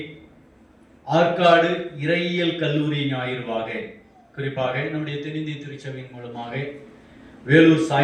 ஆற்காடு இறையியல் கல்லூரி ஞாயிறுவாக, குறிப்பாக நம்முடைய தென்னிந்திய திருச்சபையின் மூலமாக வேலூர்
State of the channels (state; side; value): identical; both; correlation 1.00